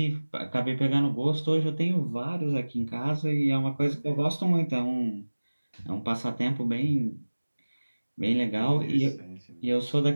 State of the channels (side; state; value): both; inverted; correlation -1.00